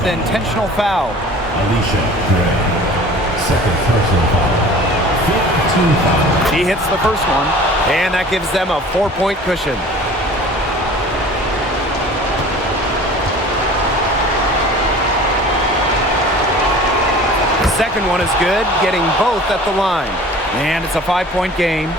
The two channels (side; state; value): both; normal; correlation 0.44